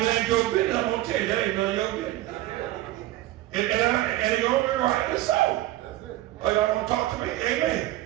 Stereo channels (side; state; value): left; quieter; 16.0 dB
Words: it ain't your business, I'm going to tell you, that ain't none of your business. And it's going to be rightly so. Or y'all don't talk to me. Amen.